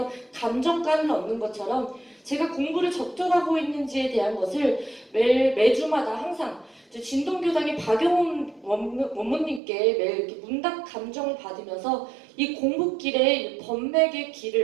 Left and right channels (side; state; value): left; drops out; at 9.6 s